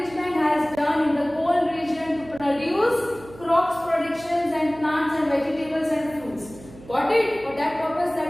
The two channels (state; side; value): noise; right; hum, 20 dB below the sound